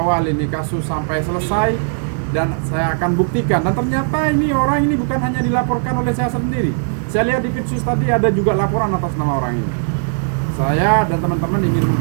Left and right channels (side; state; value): left; silent; 60 dB below the other